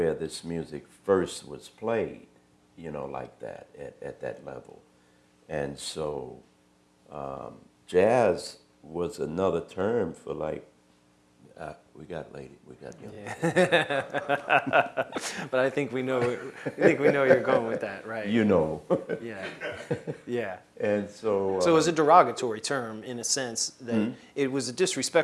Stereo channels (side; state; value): both; identical; correlation 1.00